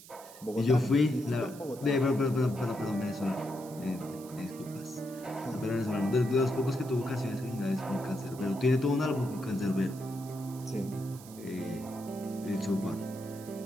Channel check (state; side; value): noise; right; hiss, 18 dB below the sound